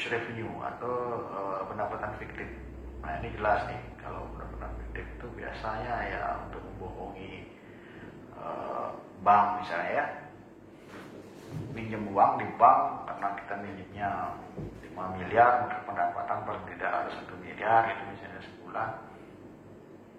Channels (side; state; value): both; identical; correlation 1.00